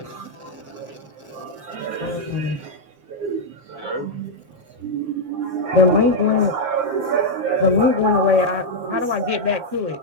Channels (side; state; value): left; late; 7.5 ms